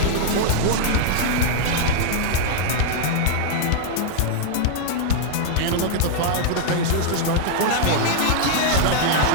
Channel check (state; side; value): different; both; correlation -0.01